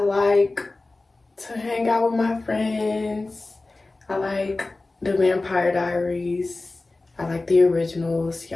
to hang out with my friends. I like the Vampire Diaries. I like the originals.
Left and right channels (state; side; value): quieter; right; 3.2 dB